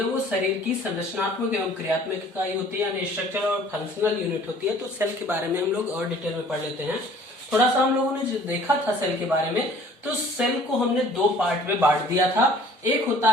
वो शरीर की संरचनात्मक एवं क्रियात्मक इकाई होती है, यानी स्ट्रक्चर और फंक्शनल यूनिट होती है। तो सेल के बारे में हम लोग और डिटेल में पढ़ लेते हैं। थोड़ा सा हम लोगों ने जो देखा था सेल के बारे में, तो सेल को हमने दो पार्ट में बांट दिया था। एक होता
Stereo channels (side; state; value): both; normal; correlation 0.52